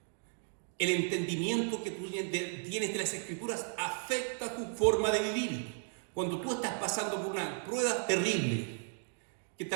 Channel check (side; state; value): left; silent; 55 dB below the other